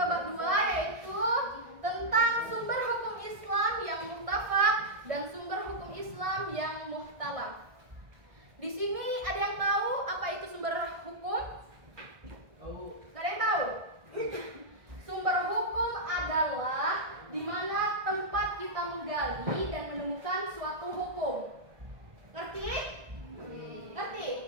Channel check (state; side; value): late; left; 1.6 ms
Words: bab 2 yaitu tentang sumber hukum Islam yang muhtafaq dan sumber hukum Islam yang muhtalaf. Di sini ada yang tahu apa itu sumber hukum? Gak ada yang tahu? Sumber hukum adalah di mana tempat kita menggali dan menemukan suatu hukum. Ngerti? Ngerti?